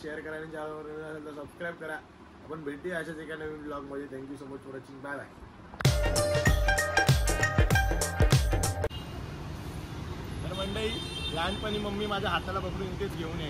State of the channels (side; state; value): both; identical; correlation 1.00